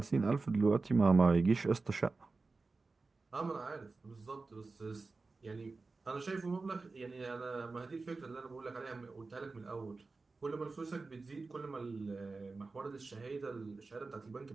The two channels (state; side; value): quieter; left; 3.9 dB